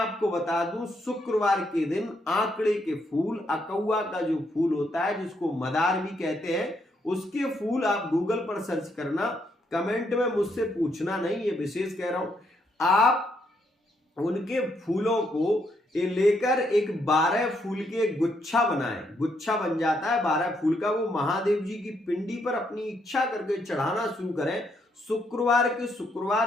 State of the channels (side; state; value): both; normal; correlation 0.75